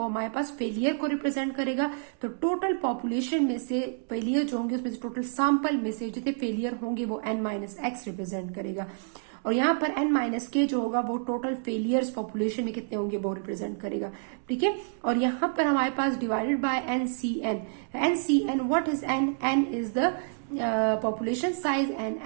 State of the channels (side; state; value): left; silent; digital silence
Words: हमारे पास फेलियर को रिप्रेजेंट करेगा। तो टोटल पॉपुलेशन में से फेलियर जो होंगे उसमें से टोटल सैंपल में से जितने फेलियर होंगे वो n माइनस एक्स रिप्रेजेंट करेगा। और यहाँ पर n माइनस के जो होगा वो टोटल फेलियर्स पॉपुलेशन में कितने होंगे वो रिप्रेजेंट करेगा, ठीक है। और यहाँ पर हमारे पास divided by NCN what is n is the population size and